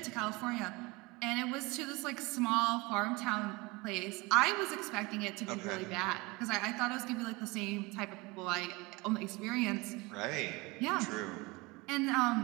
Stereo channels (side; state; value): left; quieter; 24.5 dB